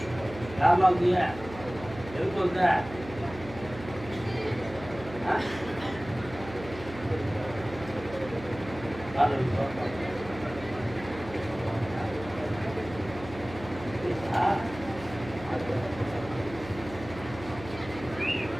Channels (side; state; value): right; noise; hum, 14 dB below the sound